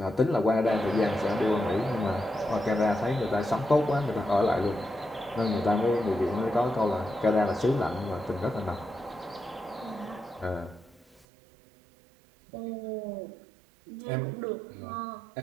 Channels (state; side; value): drops out; left; at 11.2 s